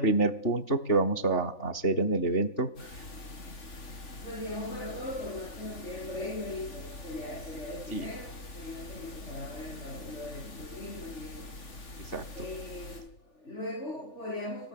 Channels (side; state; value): right; late; 3.4 ms